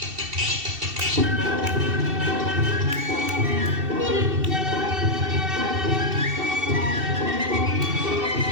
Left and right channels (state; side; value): late; left; 2.7 ms